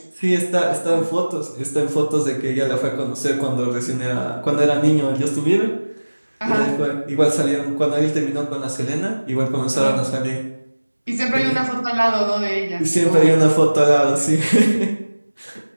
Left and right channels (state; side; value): inverted; both; correlation -1.00